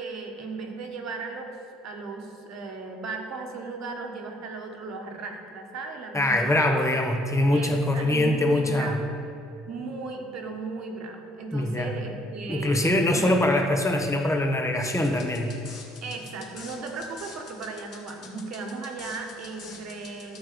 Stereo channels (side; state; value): both; normal; correlation 0.66